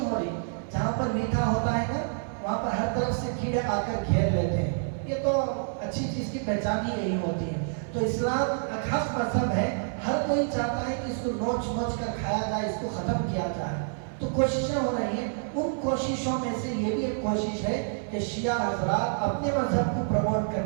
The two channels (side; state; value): left; silent; 59 dB below the other